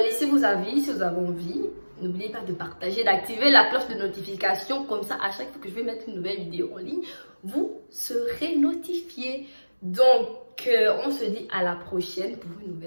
Laissez vos avis si vous avez envie. N'oubliez pas de partager, d'activer la cloche de notification. Comme ça, à chaque fois que je vais mettre une nouvelle vidéo en ligne, vous serez notifié. Donc, on se dit à la prochaine pour une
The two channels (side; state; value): both; inverted; correlation -1.00